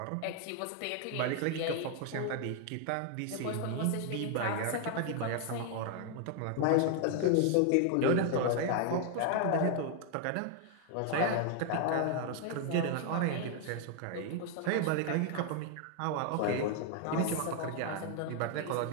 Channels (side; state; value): both; different; correlation 0.00